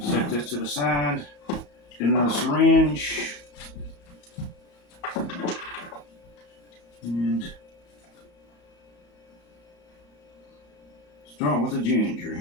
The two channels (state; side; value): late; right; 34 ms